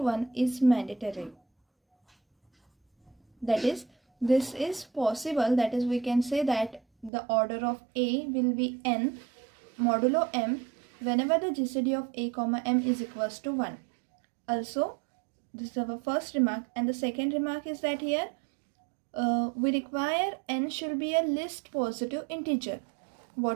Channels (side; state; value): left; drops out; at 7.1 s